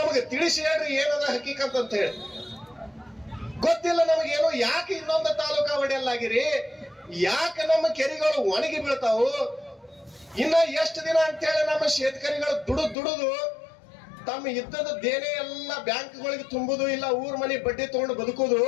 ತಿಳಿಸಿ ಹೇಳ್ರಿ ಏನದ ಹಕೀಕತ್ ಅಂತ ಹೇಳಿ. ಗೊತ್ತಿಲ್ಲ ನಮಗೇನು. ಯಾಕೆ ಇನ್ನೊಂದು ತಾಲೂಕಾ ಒಡೆಯಲ್ಲಾಗಿರಿ? ಯಾಕೆ ನಮ್ಮ ಕೆರೆಗಳು ಒಣಗಿ ಬೀಳ್ತಾವು? ಇನ್ನ ಎಷ್ಟು ದಿನ ಅಂತ ಹೇಳಿ ನಮ್ಮ ಶೇತಕರಿಗಳು ದುಡುದು ತಮ್ಮ ಇದ್ದದ ದೇನೆ ಎಲ್ಲ ಬ್ಯಾಂಕ್ಗಳಿಗೆ ತುಂಬುದು, ಇಲ್ಲ ಊರ್ ಮನೆ ಬಡ್ಡಿ ತಗೊಂಡು ಬದುಕುದು.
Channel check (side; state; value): right; drops out; at 13.0 s